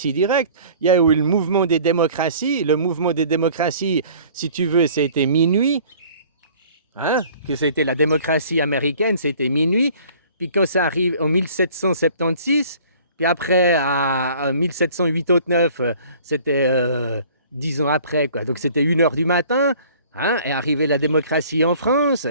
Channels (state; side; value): inverted; both; correlation -0.51